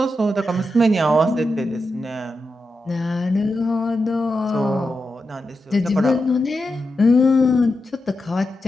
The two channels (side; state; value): both; normal; correlation 0.88